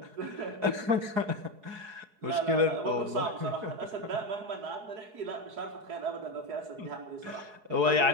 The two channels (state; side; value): late; left; 4.7 ms